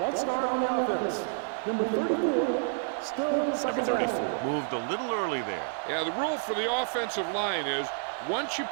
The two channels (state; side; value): silent; left; digital silence